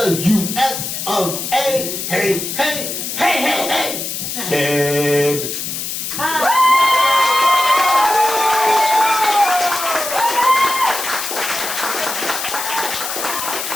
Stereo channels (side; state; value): left; noise; hiss, 5 dB below the sound